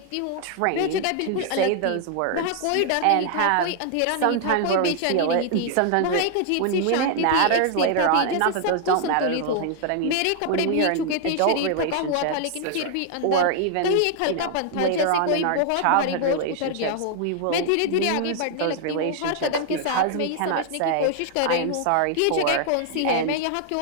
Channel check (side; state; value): both; different; correlation 0.00